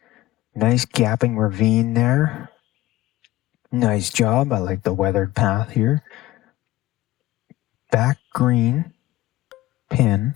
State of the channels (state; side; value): quieter; right; 16.1 dB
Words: Nice gapping ravine there. Nice job. I like the weathered path here. Back green pin.